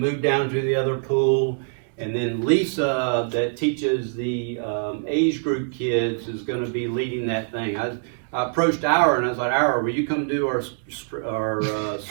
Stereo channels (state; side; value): silent; left; digital silence